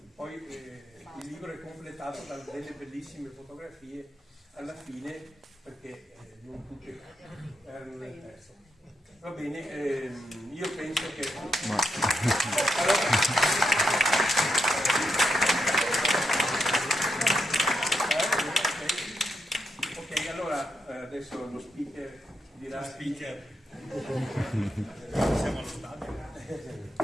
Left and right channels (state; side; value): normal; both; correlation 0.83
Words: poi il libro è completato da delle bellissime fotografie alla fine, perché non tutte erano nel testo. Va bene, io penso che... Ok, allora adesso lo speaker dirà... Siamo allo stadio.